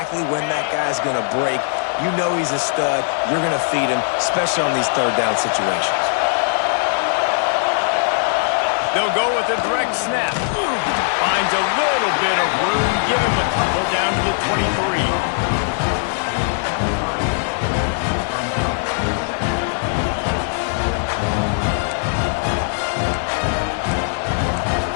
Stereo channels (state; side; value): silent; right; 66 dB below the other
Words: when that guy's going to break. You know he's a stud. You're going to feed him, especially on these 3rd down situations. They'll go with a direct snap. Finds a little bit of room. Give him a couple down to the 23.